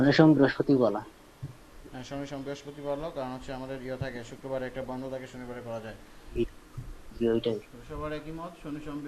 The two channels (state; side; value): identical; both; correlation 1.00